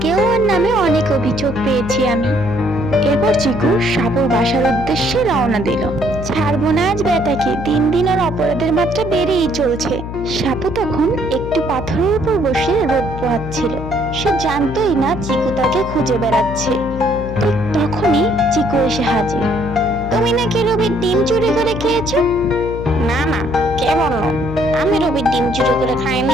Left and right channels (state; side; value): noise; left; hum, 8 dB below the sound